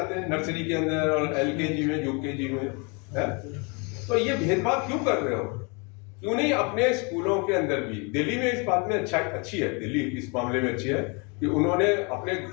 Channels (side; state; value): right; quieter; 32.0 dB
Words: हैं, नर्सरी के अंदर और एलकेजी में, यूकेजी में है। तो ये भेदभाव क्यों कर रहे हो? क्यों नहीं अपने स्कूलों के अंदर भी? दिल्ली में इस बात में अच्छी है, दिल्ली इस मामले में अच्छी है कि उन्होंने अपने